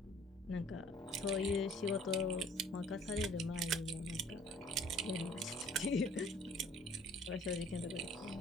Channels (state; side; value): normal; both; correlation 0.55